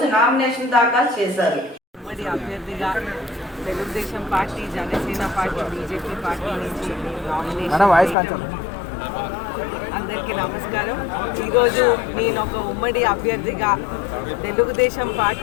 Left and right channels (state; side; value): drops out; right; at 8.2 s